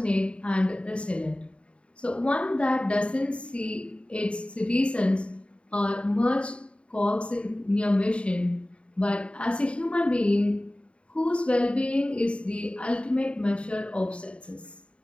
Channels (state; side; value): late; right; 0.059 ms